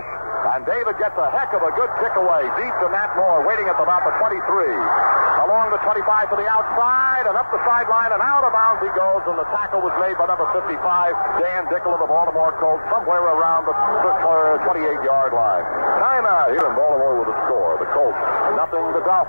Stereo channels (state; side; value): inverted; both; correlation -1.00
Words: and David gets a heck of a good kick away deep to Nat Moore, waiting at about the 23. Along the 25 to the outside, and up the sideline, and out of bounds he goes, and the tackle was made by number 55, Dan Dickel of the Baltimore Colts, somewhere around the 28-yard line. Timeout here in Baltimore with a score. The Colts, nothing. The